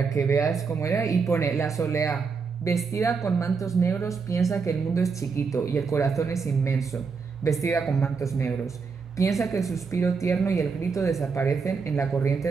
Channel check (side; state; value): left; quieter; 5.1 dB